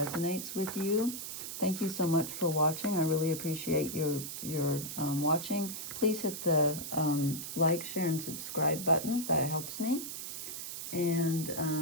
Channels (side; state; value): right; noise; hiss, 7 dB below the sound